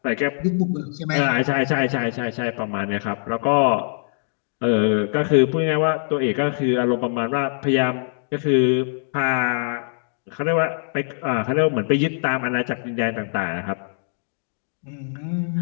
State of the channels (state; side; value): silent; right; digital silence